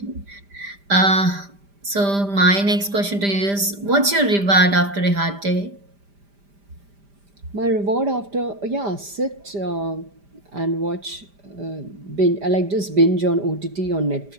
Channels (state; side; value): late; left; 5.0 ms